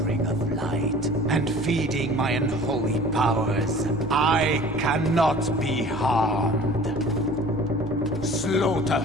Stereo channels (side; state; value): both; normal; correlation 0.46